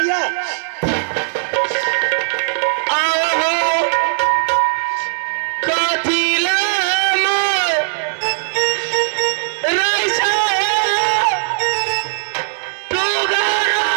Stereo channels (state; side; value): silent; left; digital silence